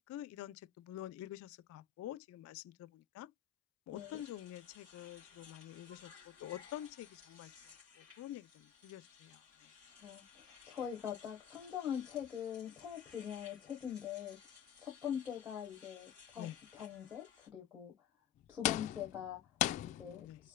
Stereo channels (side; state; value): right; quieter; 10.7 dB